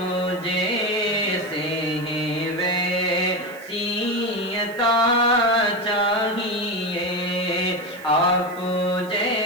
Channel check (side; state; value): right; noise; hiss, 23 dB below the sound